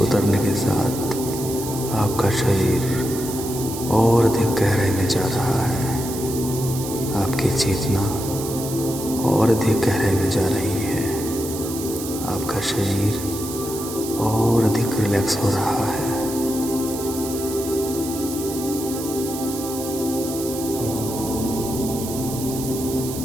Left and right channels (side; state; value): right; noise; hiss, 9 dB below the sound